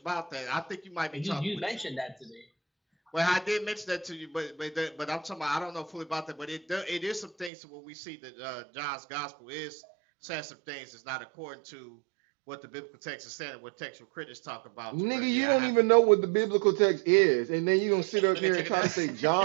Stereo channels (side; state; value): left; drops out; at 7.5 s